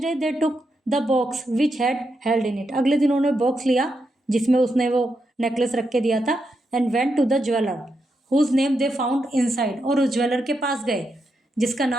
day they took the box which had held in it, अगले दिन उन्होंने बॉक्स लिया जिसमें उसने वो नेकलेस रख के दिया था। And went to the jeweller whose name they found inside, और उस ज्वेलर के पास गए जिसका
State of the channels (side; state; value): both; normal; correlation 0.84